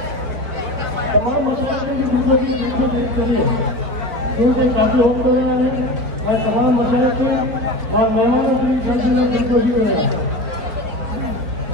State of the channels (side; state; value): left; late; 4.6 ms